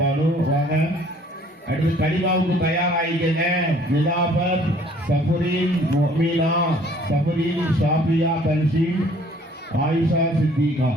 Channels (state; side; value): normal; both; correlation 0.57